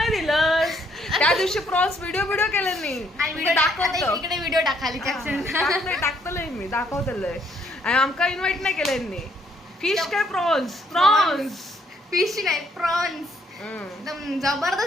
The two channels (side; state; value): both; normal; correlation 0.69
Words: दिलंस. त्या दिवशी प्रॉन्स व्हिडिओ केलं नाही. दाखवतो इकडे व्हिडिओ टाकाली टाकतलंय मी, दाखवतलंय. आणि आमका इन्व्हाइट नाही केलं. फिश काय प्रॉन्स फिश नाही प्रॉन्स. एकदम